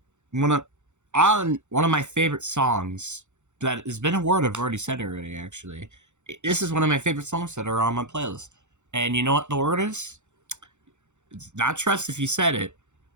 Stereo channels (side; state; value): left; late; 0.84 ms